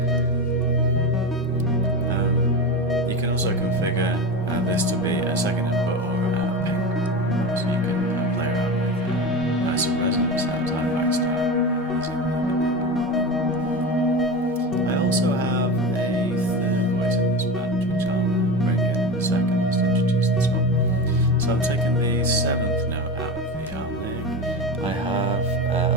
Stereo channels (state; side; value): normal; both; correlation 0.24